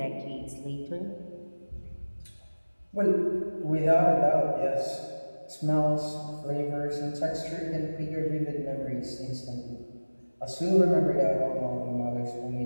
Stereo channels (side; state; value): both; inverted; correlation -1.00